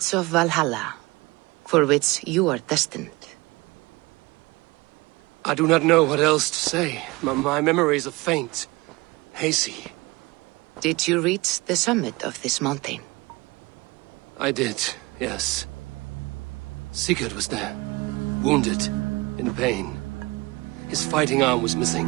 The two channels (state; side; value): quieter; left; 22.9 dB